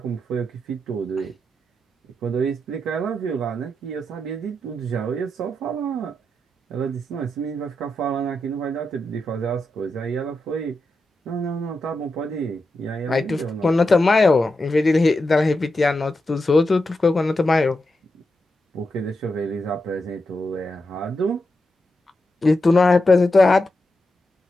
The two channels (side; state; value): both; normal; correlation 0.87